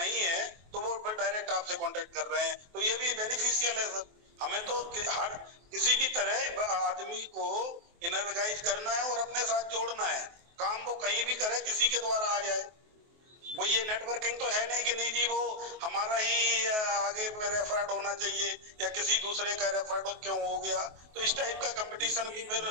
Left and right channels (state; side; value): late; left; 23 ms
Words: है, तो वो फिर डायरेक्ट आपसे कांटेक्ट कर रहे हैं, तो ये भी बेनिफिशियल है सर। हमें तो हर किसी भी तरह आदमी को इनर्जाइज करना है और अपने साथ जोड़ना है। काम वो कहीं भी करे, किसी के द्वारा आ जाए, वो ये नेटवर्किंग तो है नहीं कि नहीं जी वो हमारा ही आगे रेफर्ड होना चाहिए या किसी दूसरे का रेफर्ड क्यों हो गया, तो इस टाइप का कंपटीशन भी फिर